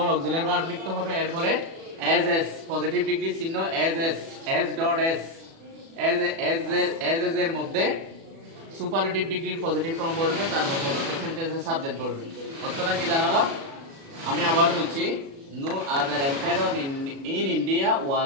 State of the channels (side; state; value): left; late; 36 ms